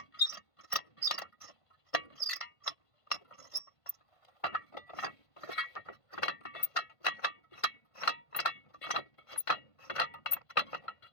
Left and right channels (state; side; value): late; right; 1.5 ms